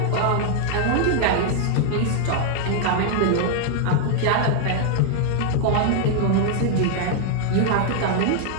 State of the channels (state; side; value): different; both; correlation 0.00